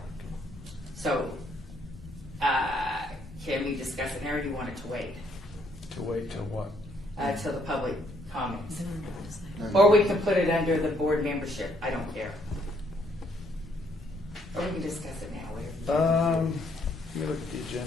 So, can we discuss it now, or do you want it to wait To wait till what? till the public comments? No, Or we can put it under the board membership, I don't care. Or we can discuss it now, whatever. Let me look at the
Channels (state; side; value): normal; both; correlation 0.69